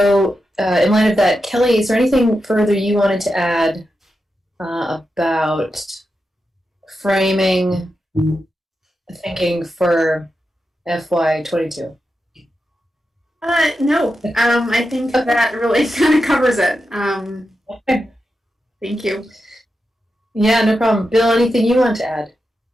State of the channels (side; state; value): both; normal; correlation 0.88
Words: in light of that, Kelly, is there anything further you wanted to add about framing thinking for FY22? No. I think that really kind of covers it. Okay. Thank you. Yeah, no problem. Bill, anything you want to add?